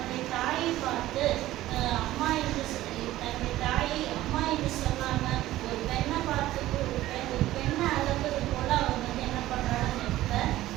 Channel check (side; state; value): left; quieter; 15.3 dB